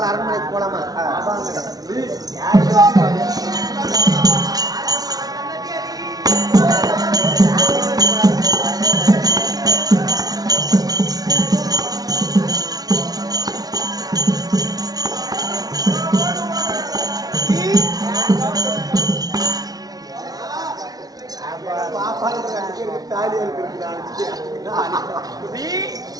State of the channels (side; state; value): left; late; 0.18 ms